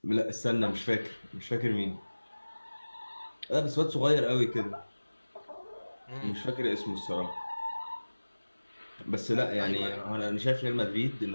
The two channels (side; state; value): both; inverted; correlation -1.00